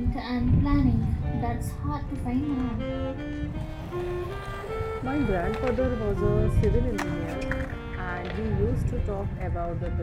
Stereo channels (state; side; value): identical; both; correlation 1.00